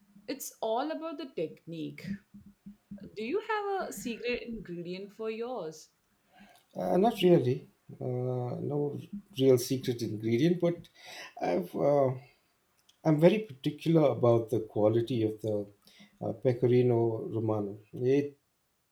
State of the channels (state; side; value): identical; both; correlation 1.00